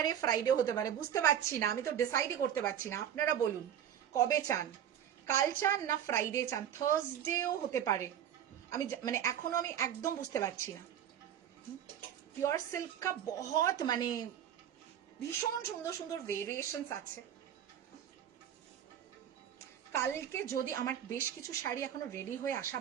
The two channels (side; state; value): left; quieter; 9.8 dB